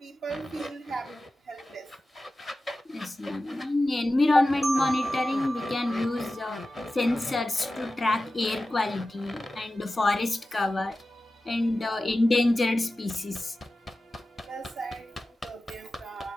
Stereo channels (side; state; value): both; normal; correlation 0.94